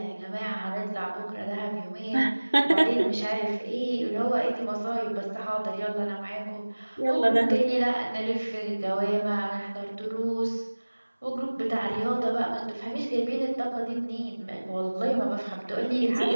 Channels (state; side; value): inverted; both; correlation -1.00